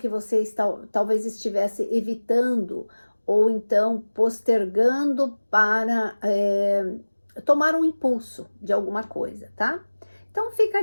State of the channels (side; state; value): both; inverted; correlation -1.00